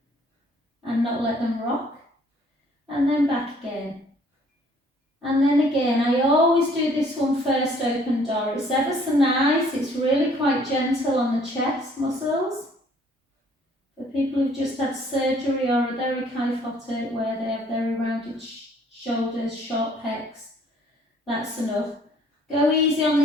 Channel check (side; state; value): both; normal; correlation 0.60